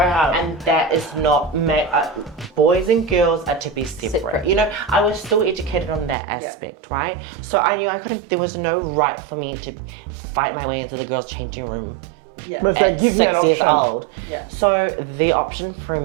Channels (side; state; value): left; drops out; at 6.2 s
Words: have? And that is not boys and girls are to be separate. I was still educated on that aspect, right? So I knew there was no right for me to fight my way into the girls' changing room. Yeah. But it's like, give me an 6 years option. old. Yeah. So the option for